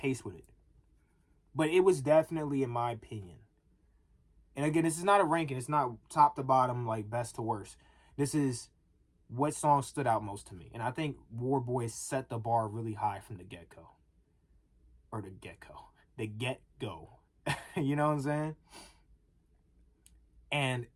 with it. But it was definitely, in my opinion. And again, this is not a ranking. It's not top to bottom, like best to worst. This is what song stood out most to me. And I think War Boys set the bar really high from the get-go. Or the get-go. The get-go. You know what I'm saying? And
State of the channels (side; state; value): both; identical; correlation 1.00